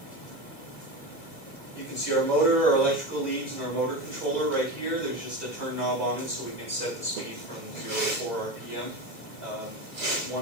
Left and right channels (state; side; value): late; right; 2.5 ms